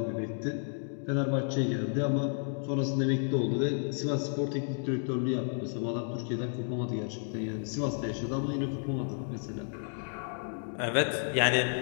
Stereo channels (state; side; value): silent; right; 57 dB below the other